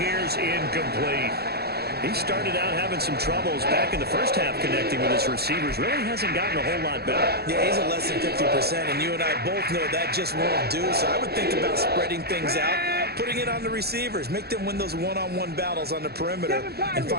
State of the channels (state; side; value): late; left; 0.46 ms